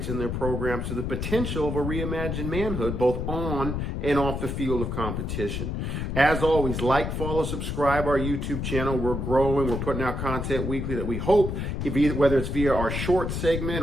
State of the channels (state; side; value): noise; left; rumble, 3 dB below the sound